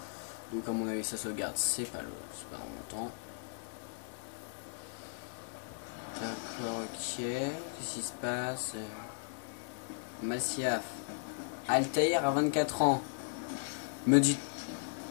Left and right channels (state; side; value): silent; right; digital silence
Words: Donc à mon avis ça sauvegarde, c'est pas dans longtemps. D'accord, ok. Qu'est-ce qui se passe? Massiaf. Altaïr à 24 ans. Me dites